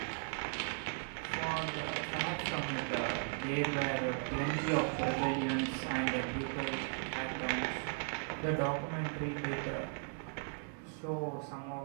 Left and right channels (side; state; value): left; silent; 53 dB below the other